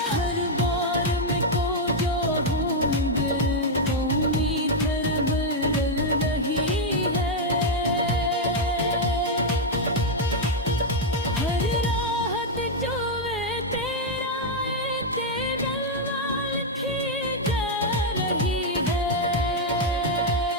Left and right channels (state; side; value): normal; both; correlation -0.01